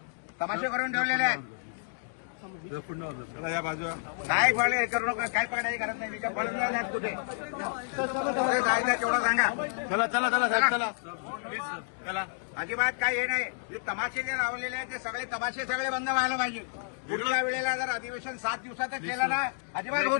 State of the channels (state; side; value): silent; right; digital silence